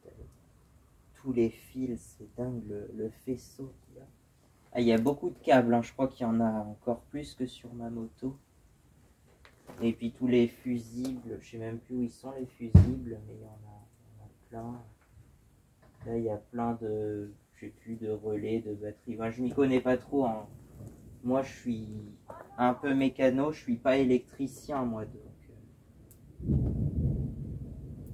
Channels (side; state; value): both; identical; correlation 1.00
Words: tous les fils, c'est dingue le faisceau qu'il y a. Ah, il y a beaucoup de câbles, hein. Je crois qu'il y en a encore plus que sur ma moto. Et puis tous les fusibles, je sais même plus où ils sont les fusibles, mais il y en a plein. Là, il y a plein de, je sais plus, de relais, de batteries. Enfin, je m'y connais pas trop, hein. Moi, je suis un peu mécano, je suis pas électricien, moi, donc.